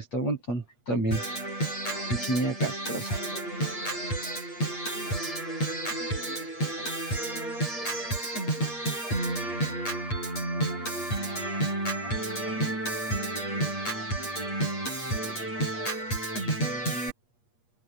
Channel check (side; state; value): right; late; 8.4 ms